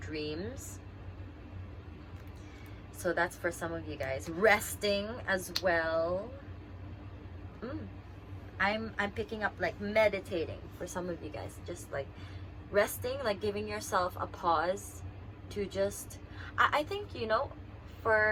So that's for some of you guys. Resting as well. I'm picking up like meditating for some of you guys. Just like resting, like giving yourself a pause to just. I think, you know,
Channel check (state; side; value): identical; both; correlation 1.00